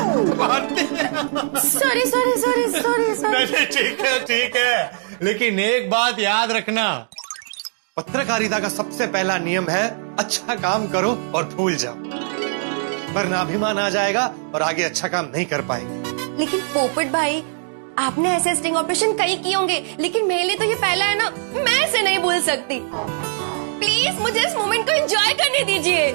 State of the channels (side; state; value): left; silent; digital silence